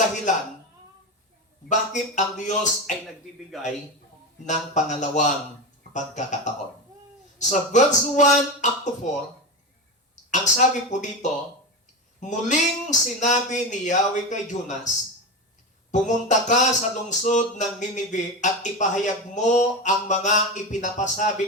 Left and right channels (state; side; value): normal; both; correlation 0.20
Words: bakit ang Diyos ay nagbibigay ng pangalawang pagkakataon. Sa verse 1 up to 4, ang sabi po dito, muling sinabi ni Yahweh kay Jonas, pumunta ka sa lungsod ng Ninive at ipahayag mo ang mga